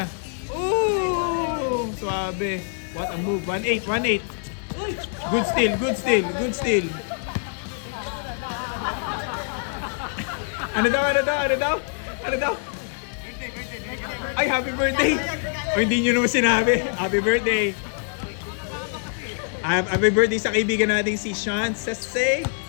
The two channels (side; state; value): right; silent; 56 dB below the other